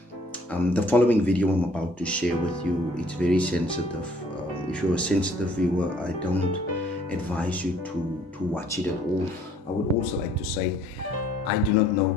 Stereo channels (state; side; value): normal; both; correlation 0.59